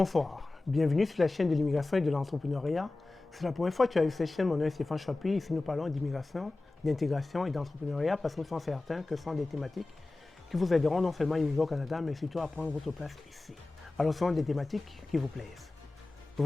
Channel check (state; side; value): quieter; right; 3.1 dB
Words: Bienvenue sur la chaîne de l'immigration et de l'entrepreneuriat. C'est la première fois que tu as vu cette chaîne. Mon nom est Stéphane Chapuis. Ici, nous parlons d'immigration, d'intégration et d'entrepreneuriat parce que nous sommes certains que ce sont des thématiques qui vous aideront non seulement à immigrer au Canada, mais surtout à prendre votre place ici. Alors, ce sont des thématiques qui vous plaisent. Je